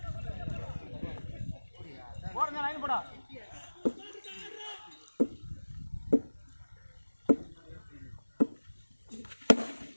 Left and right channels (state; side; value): inverted; both; correlation -1.00